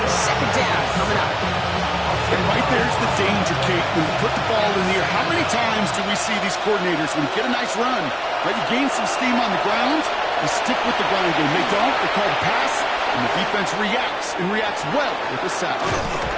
Second down coming up. And right there's the danger, Kate. When you put the ball in the air, how many times do we see these coordinators, when you get a nice run, right, you gain some steam on the ground, you stick with the ground game. They don't. They call the pass, and the defense reacts, and reacts well with the sack.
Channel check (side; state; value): both; identical; correlation 1.00